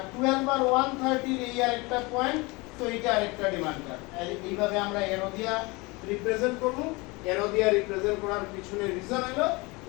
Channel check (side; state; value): right; quieter; 25.2 dB